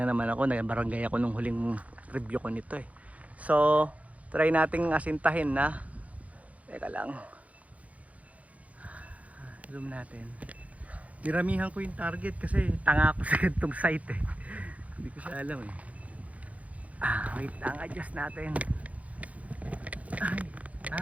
naman ako. Nagbarangay ako nung huling review ko nito eh. So, try nating asintahin na. Teka lang. Zoom natin. Diramihan ko yung target kasi tanga ako sa gantong site eh. Hindi ko siya alam eh. Wait lang, adjust natin.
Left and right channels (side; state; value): left; late; 0.068 ms